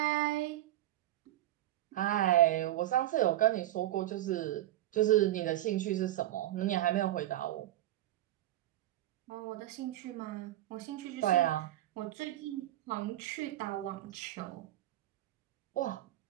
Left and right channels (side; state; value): left; quieter; 14.1 dB